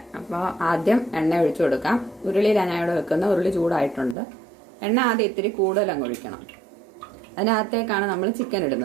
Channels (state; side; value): drops out; left; at 4.2 s